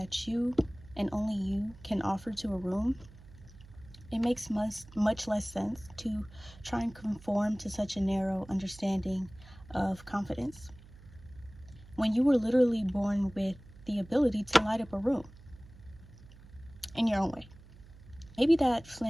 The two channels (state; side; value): noise; right; hum, 21 dB below the sound